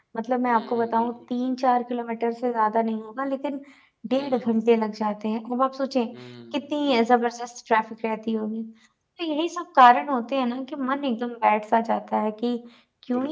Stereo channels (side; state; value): both; identical; correlation 1.00